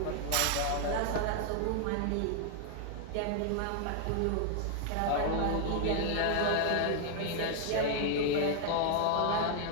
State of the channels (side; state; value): both; different; correlation 0.00